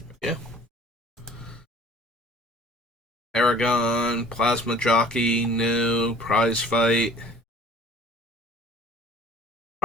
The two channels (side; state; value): both; normal; correlation 0.49